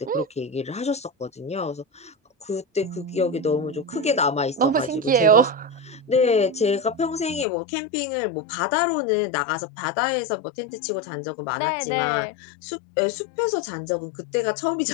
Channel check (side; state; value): right; drops out; at 7.5 s